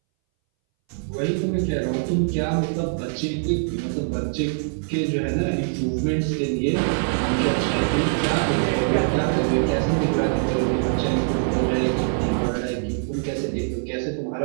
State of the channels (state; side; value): silent; left; 61 dB below the other